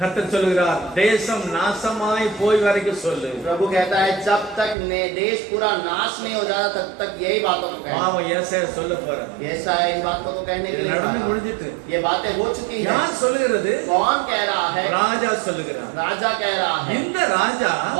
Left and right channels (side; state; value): left; drops out; at 4.8 s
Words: சொல்லுகிறார், தேசம் நாசமாய் போய் வரைக்கும் சொல்லு. प्रभु कहता है जब तक देश पूरा नाश नहीं हो जाता तब तक यही बातों को कहना. பாவம் ஏசாயா சொல்ல போற. ऐसा है, इन बातों को कहने के लिए நடந்து कहा. முடிஞ்சிட்டு. ये बातें हो चुकी है. யார் சொல்லுகிறது? कौन कह रहा है? ராஜா சொல்லுகிறார். राजा कह रहा है. இந்த ராஜா